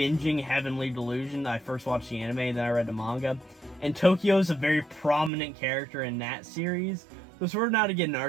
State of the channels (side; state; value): left; drops out; at 5.3 s